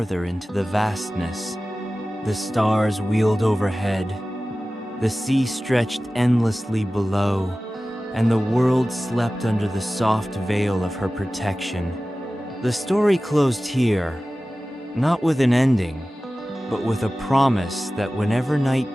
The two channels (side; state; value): both; normal; correlation 0.96